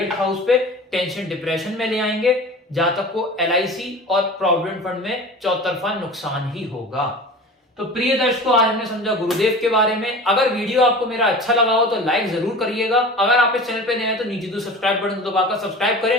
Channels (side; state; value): both; normal; correlation 0.37